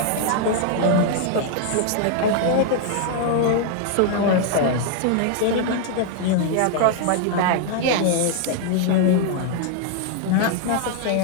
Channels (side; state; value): both; different; correlation 0.00